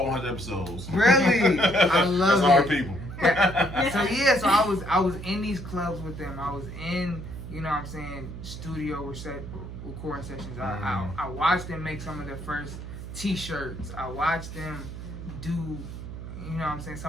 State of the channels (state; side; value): noise; right; hum, 10 dB below the sound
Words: 100 episodes. Really? I love That's our it. people. So I was in these clubs with them. I was in, you know what I'm saying, studio recording sessions. I watched them make some of their first t-shirts. I watched them do, you know what I'm saying,